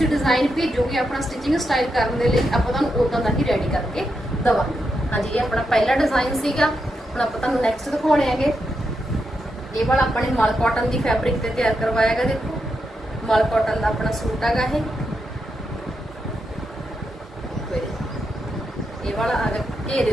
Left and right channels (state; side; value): normal; both; correlation 0.84